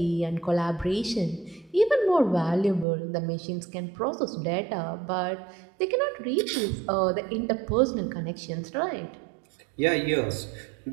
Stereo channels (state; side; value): drops out; left; at 2.9 s